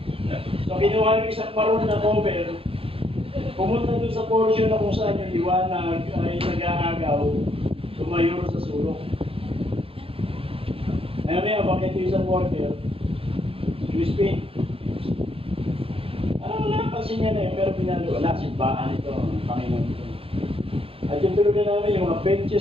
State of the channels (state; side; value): late; left; 0.27 ms